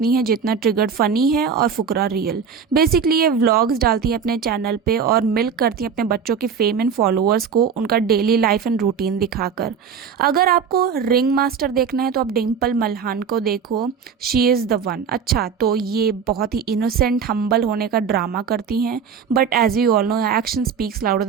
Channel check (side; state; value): left; quieter; 6.7 dB